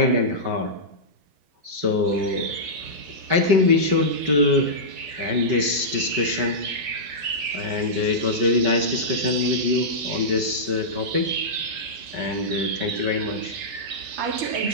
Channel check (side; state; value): left; late; 5.2 ms